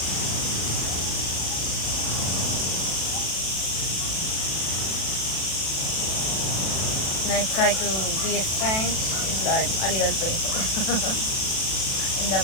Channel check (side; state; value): right; late; 36 ms